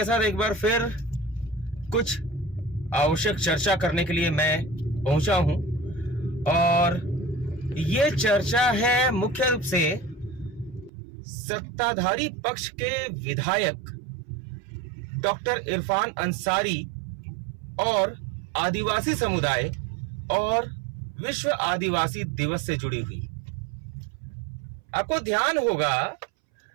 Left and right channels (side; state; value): left; drops out; at 10.9 s